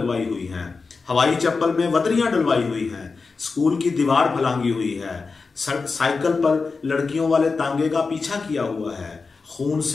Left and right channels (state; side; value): quieter; right; 4.4 dB